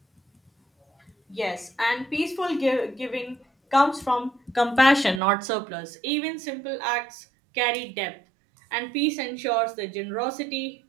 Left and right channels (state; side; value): drops out; left; at 5.2 s